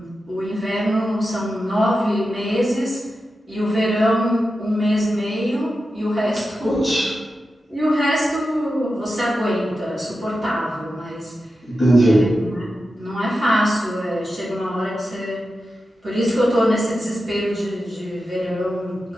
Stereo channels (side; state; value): both; normal; correlation 0.91